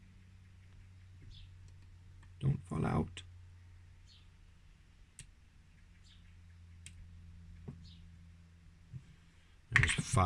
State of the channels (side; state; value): both; identical; correlation 1.00